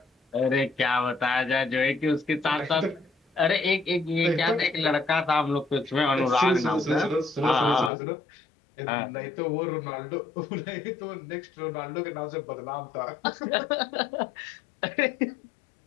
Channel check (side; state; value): right; drops out; at 7.9 s